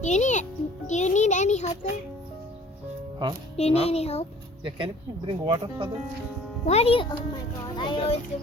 Do you need any help there? Huh? Do you need any help? Yeah, can you bring water for them? Why do you? Oh my god, I always do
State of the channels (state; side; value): normal; both; correlation 0.51